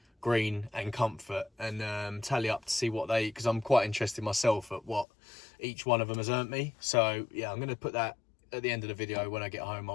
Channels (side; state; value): right; drops out; at 5.1 s